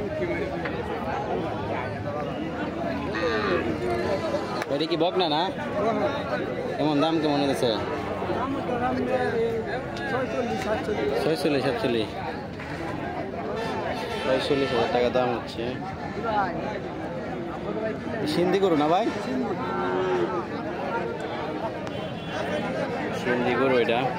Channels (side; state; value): both; identical; correlation 1.00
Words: এটা কি বকনা না? কেমন দাম কেমন হয়েছে? 46,000 টাকা দাম হচ্ছে। সিন্ধি গরু না ভাই? সিন্ধি গরু, এটা